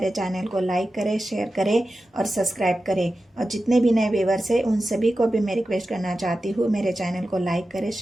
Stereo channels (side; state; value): both; normal; correlation 0.93